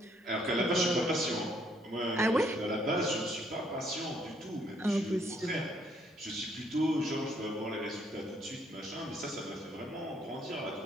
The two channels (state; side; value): normal; both; correlation 0.68